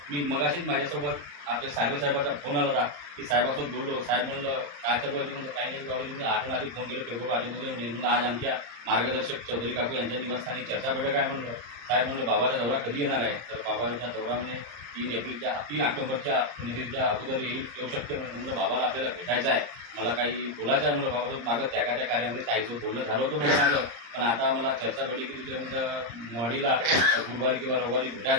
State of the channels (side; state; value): left; late; 34 ms